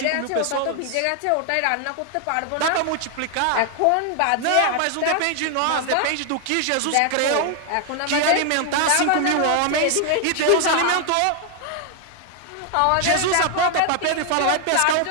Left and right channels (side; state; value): both; different; correlation 0.00